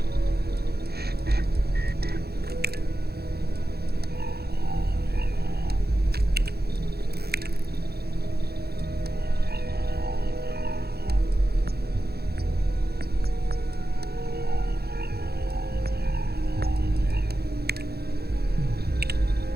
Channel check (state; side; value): late; left; 0.46 ms